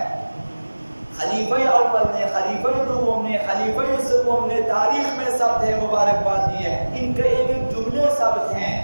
خلیفہ اول نے، خلیفہ دوم نے، خلیفہ سوم نے تاریخ میں ثبت ہے مبارکباد دی ہے. ان کے ایک ایک جملے ثبت ہیں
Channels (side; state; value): both; inverted; correlation -1.00